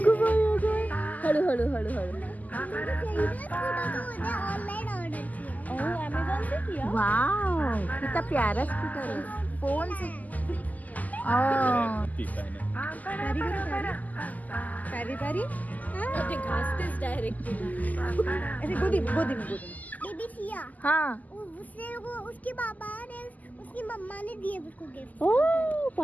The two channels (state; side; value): late; right; 0.079 ms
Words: हळू हळू हळू हळू. वाव कितना प्यारा स्कूटर है. फोन से पारी पारी घासतेच डायरेक्ट. ऐसे गोदी गोदी में गोदी. बेबी सिया, हाँ उसके पापा ने उसकी मम्मा ने दिए उसको गिफ्ट. ओह